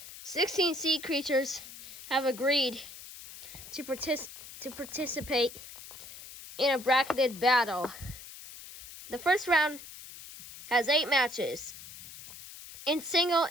Sixteen sea creatures have agreed to participate in a bracketed battle. The first round has 8 matches in single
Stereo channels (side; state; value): left; noise; hiss, 15 dB below the sound